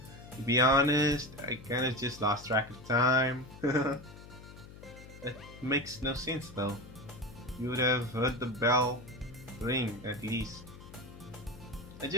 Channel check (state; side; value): noise; left; hum, 17 dB below the sound